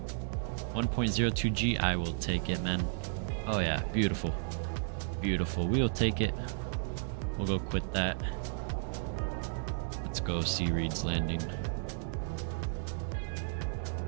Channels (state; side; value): silent; left; 55 dB below the other